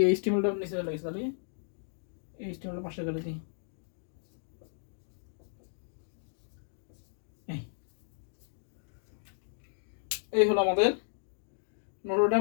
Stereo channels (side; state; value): right; silent; digital silence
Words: এইচটিএমএলটা নিচে চলে গেছে। তাহলে এইচটিএমএলটা পাশে করে দিই। এই হলো আমাদের নটর